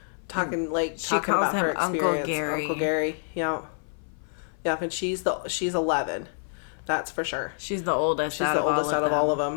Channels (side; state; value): right; silent; 57 dB below the other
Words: Talking calls about her him Uncle experience. Gary. Uncle Gary. Yeah. Yeah, and she's 11. That's for sure. She's the oldest She's the oldest out of all of